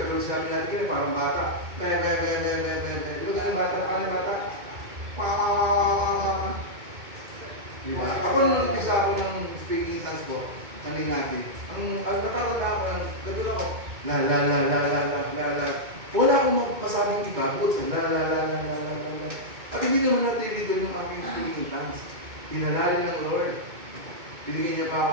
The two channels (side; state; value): left; late; 2.2 ms